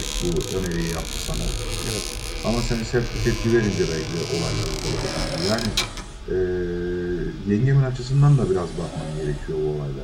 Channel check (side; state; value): both; identical; correlation 1.00